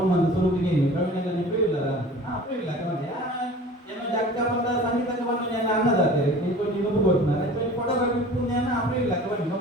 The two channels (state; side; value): normal; both; correlation 0.42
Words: ಬಂದು ಸುರುಕಿಗೆ ಪ್ರವೀಣೆಲ್ಲ ನೆನಪಿಲ್ಲ ಅಪ್ಪಿಲ್ಲ ಏನೋ ಜಾಗೃತ ಬಂದ ಸಂಗೀತಕ್ಕೆ ಬಂದು ನಾನು ಅನ್ನದಾಗ್ತಾರೆ ನೀವು ಕೊಡ್ತಾರೆ ಫೋಟೋಗ್ರಫಿ ಪುಣ್ಯನ ಅಪ್ಪಿಲ್ಲ ಬನ್ನಿ